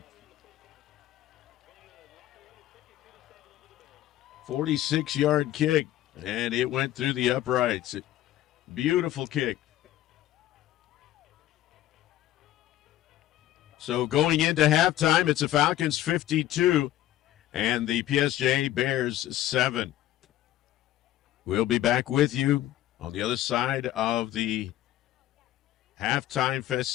46-yard kick, and it went through the uprights. Beautiful kick. So going into halftime, it's the Falcons 52 and the PSJA Bears 7. We'll be back with you on the other side of the halftime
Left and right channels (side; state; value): right; quieter; 13.7 dB